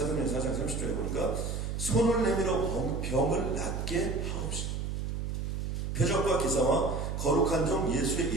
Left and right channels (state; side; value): noise; right; hum, 3 dB below the sound